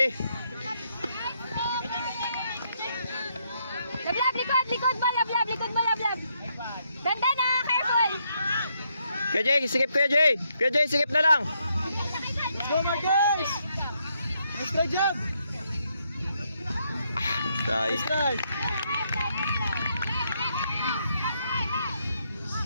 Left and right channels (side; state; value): both; inverted; correlation -0.76